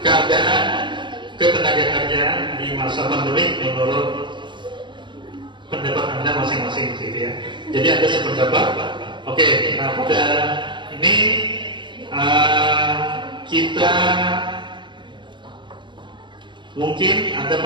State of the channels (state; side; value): late; left; 0.23 ms